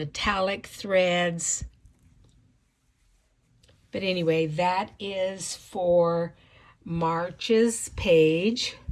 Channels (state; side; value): identical; both; correlation 1.00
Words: threads. But anyway, that is for March's page.